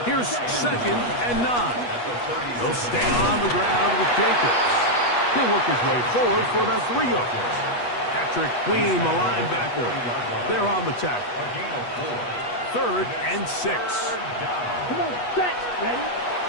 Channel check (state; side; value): late; right; 8.3 ms